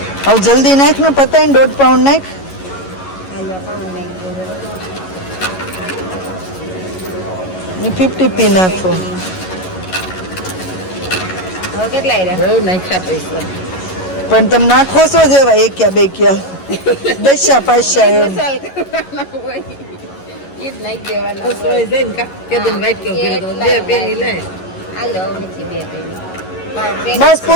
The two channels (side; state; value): right; late; 11 ms